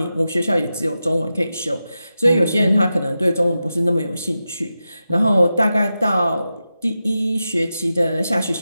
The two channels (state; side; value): inverted; both; correlation -0.91